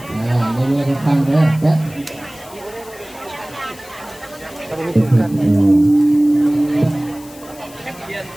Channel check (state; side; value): noise; left; hiss, 21 dB below the sound